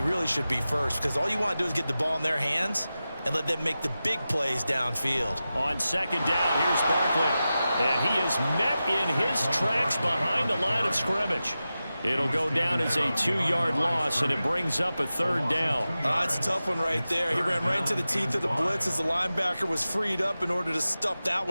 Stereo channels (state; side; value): inverted; both; correlation -0.94